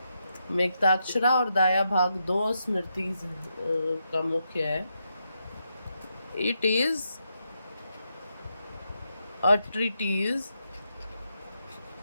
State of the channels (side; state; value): both; inverted; correlation -0.83